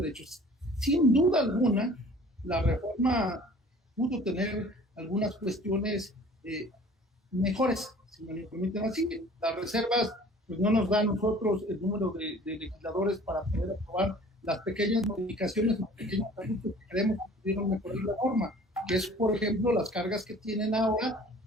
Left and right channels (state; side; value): normal; both; correlation 0.49